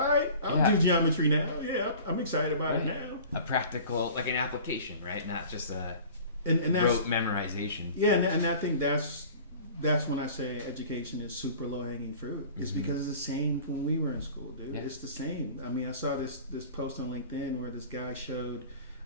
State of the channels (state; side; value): inverted; both; correlation -0.43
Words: right, I'll do geometry now. Yeah, I'm excited about it now. A practical, like an application, right? Not just a rote memorization. Yeah, and I think that's when I say education is super low-hanging fruit. It's because it's the same when we were in school, dude. Yeah. It's the same. I mean, I saw this post on LinkedIn where this guy showed